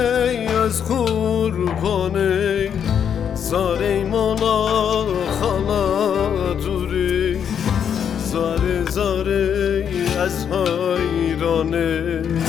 از قربانه زاره مولا خالا دوری زاره زاره از حیرانه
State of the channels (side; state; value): right; quieter; 8.2 dB